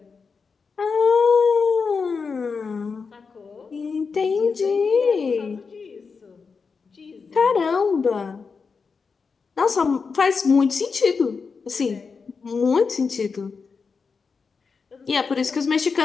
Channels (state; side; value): quieter; right; 5.1 dB